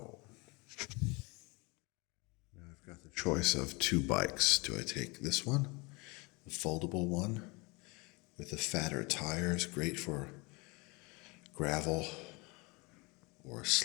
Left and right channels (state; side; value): quieter; right; 27.1 dB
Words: Now I've got the choice of two bikes. Do I take this one, the foldable one, with the fatter tires, great for gravel or